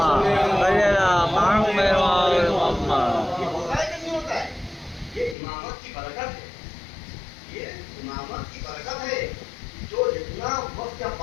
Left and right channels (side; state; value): right; drops out; at 5.4 s